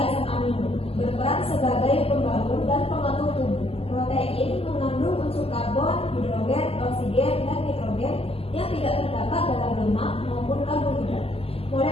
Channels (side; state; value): right; late; 0.28 ms